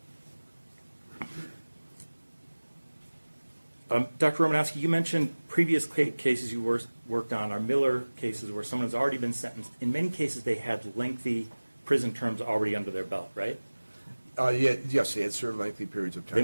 Dr. Romanowski, you mentioned previous cases you worked on are Miller cases where someone has already been sentenced. In many cases, they had lengthy prison terms already under their belt, right? Yes, they had served lengthy periods of time. They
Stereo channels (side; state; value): both; inverted; correlation -1.00